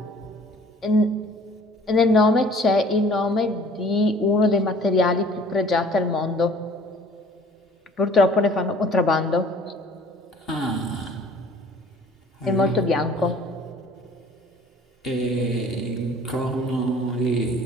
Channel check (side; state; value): both; normal; correlation 0.52